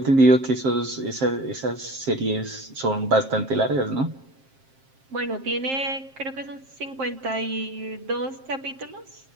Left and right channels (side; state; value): left; late; 7.5 ms